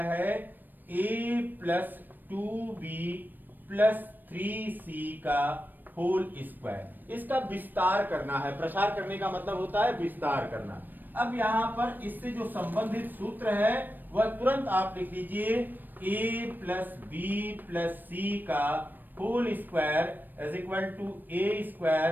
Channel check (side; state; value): left; late; 0.091 ms